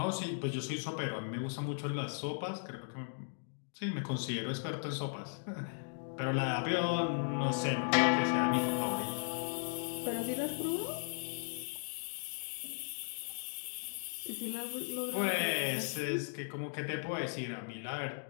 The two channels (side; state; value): right; silent; digital silence